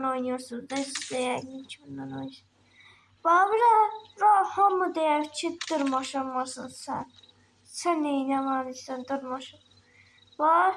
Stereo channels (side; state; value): both; identical; correlation 1.00